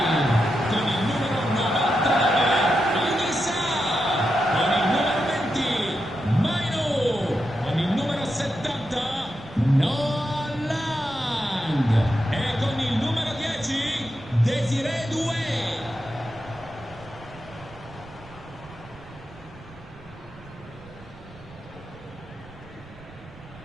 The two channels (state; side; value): noise; right; rumble, 24 dB below the sound